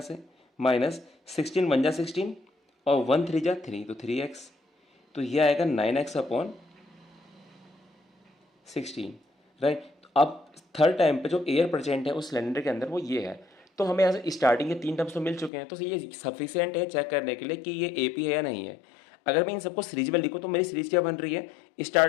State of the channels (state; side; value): drops out; right; at 15.5 s